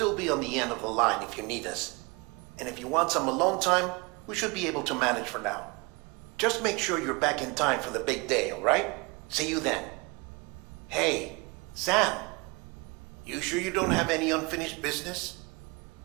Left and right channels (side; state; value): left; quieter; 27.3 dB